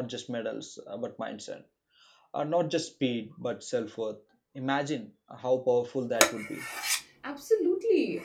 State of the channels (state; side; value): identical; both; correlation 1.00